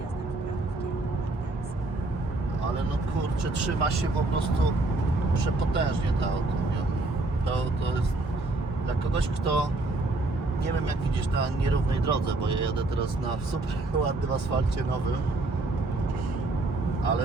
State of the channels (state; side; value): quieter; left; 3.0 dB